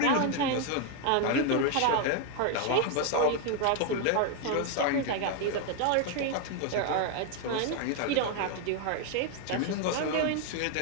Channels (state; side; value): different; both; correlation 0.01